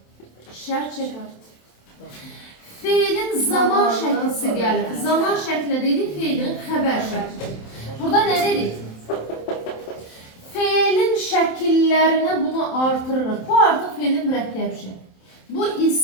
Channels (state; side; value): late; right; 27 ms